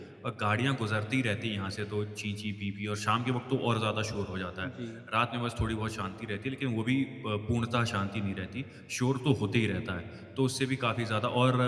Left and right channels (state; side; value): identical; both; correlation 1.00